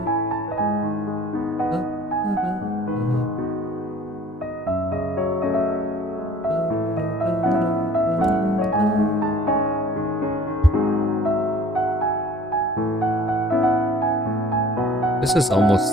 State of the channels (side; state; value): both; normal; correlation 0.50